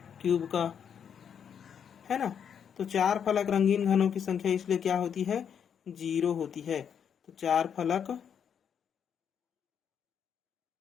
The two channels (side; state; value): right; quieter; 7.9 dB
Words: क्यूब का, है ना। तो 4 फलक रंगीन घनों की संख्या इसलिए क्या होती है? 0 होती है। तो 4 फलक